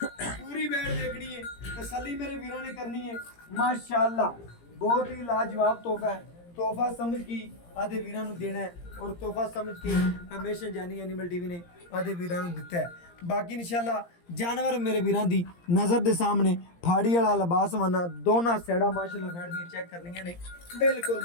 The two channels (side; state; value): right; late; 17 ms